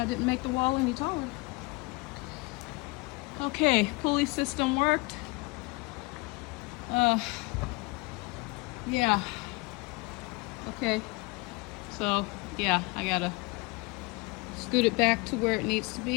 I didn't make the wall any taller. Okay, pulley system worked. Yeah. Okay. So, yeah, I gotta scoot it back to where it needs to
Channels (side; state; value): right; quieter; 25.9 dB